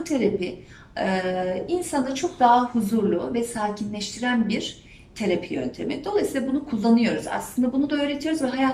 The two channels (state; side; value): identical; both; correlation 1.00